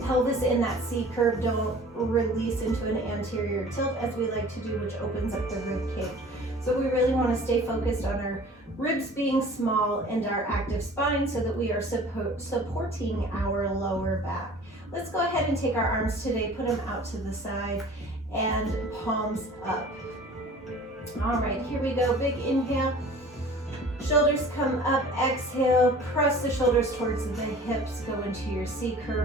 pelvis in that C curve. Don't release into an anterior tilt as we like to do, which opens up the rib cage. So we really want to stay focused on our ribs being small and our active spine so that we are supporting our lower back. Let's go ahead and take our arms today, put them out to the side and palms up. All right, here we go. Big inhale. Shoulders come up, exhale, press the shoulders towards the hips, go into your C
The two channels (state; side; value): normal; both; correlation 0.46